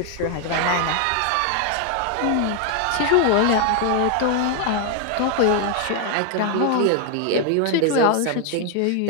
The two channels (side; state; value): both; different; correlation 0.00